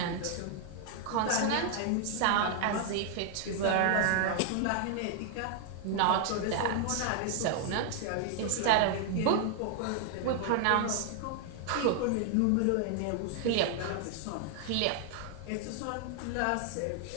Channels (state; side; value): different; both; correlation 0.00